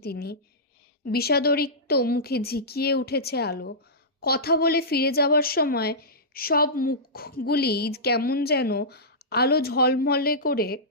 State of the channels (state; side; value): normal; both; correlation -0.16